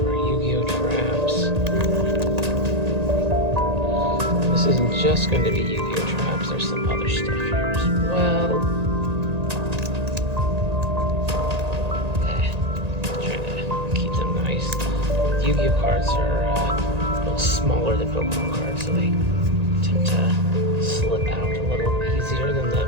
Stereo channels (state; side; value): late; left; 1.8 ms